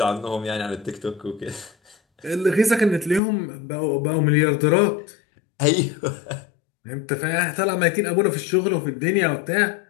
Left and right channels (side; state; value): right; drops out; at 3.2 s